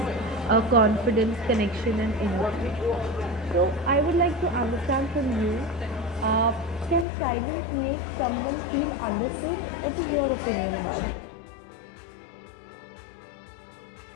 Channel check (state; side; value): drops out; right; at 7.1 s